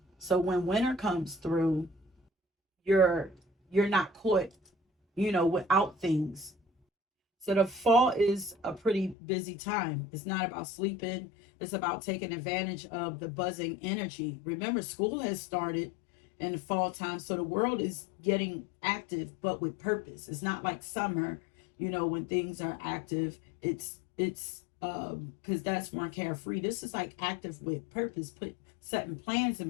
So when winter comes through, you're you're not caught, without things. So the fall is a pretty busy time. It's not about sleeping. It's about taking advantage of the buzzing energy. Remember, school has started in the fall time. So the world is getting active, but with purpose. It's not like summer, when things are active. It's because that's more carefree. This is like active with purpose, setting plans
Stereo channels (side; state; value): right; drops out; at 9.2 s